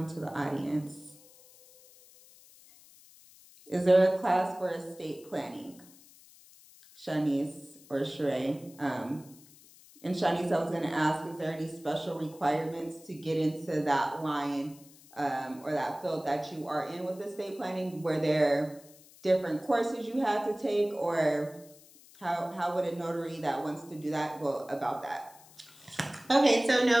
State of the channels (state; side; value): noise; left; hiss, 24 dB below the sound